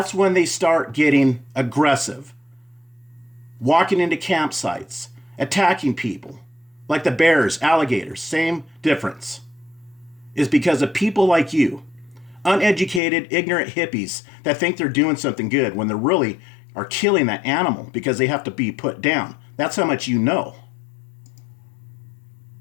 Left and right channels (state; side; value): drops out; right; at 13.0 s